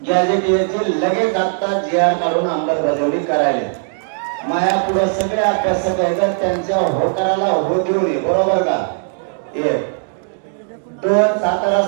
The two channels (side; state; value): left; silent; digital silence